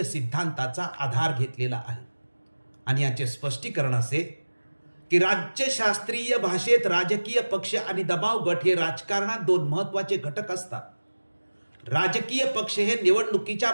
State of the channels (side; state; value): both; inverted; correlation -1.00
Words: सिद्धांताचा आधार घेतलेला आहे. आणि याचे स्पष्टीकरण असे की राज्यशास्त्रीय भाषेत राजकीय पक्ष आणि दबाव गट हे राजकारणात दोन महत्त्वाचे घटक असतात. राजकीय पक्ष हे निवडणुकीच्या